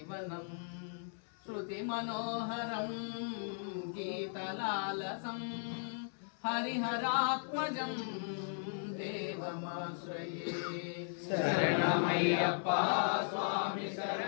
శృతిమనోహరం గీతలాలసం హరిహరాత్మజం దేవమాశ్రయే. శరణమయ్యప్ప స్వామి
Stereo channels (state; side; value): silent; right; 53 dB below the other